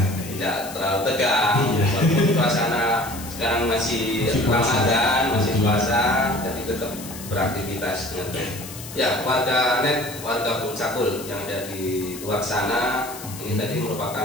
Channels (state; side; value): noise; left; hiss, 13 dB below the sound